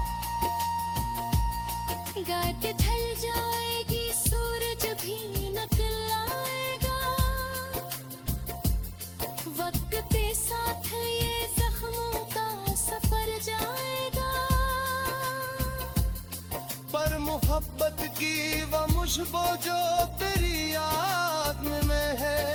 गाट ढल जाएगी सूरज भी निकल आएगा। वक्त के साथ ये जख्मों का सफर जाएगा। पर मोहब्बत की वो मुझको जो तेरी याद में है,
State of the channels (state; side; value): identical; both; correlation 1.00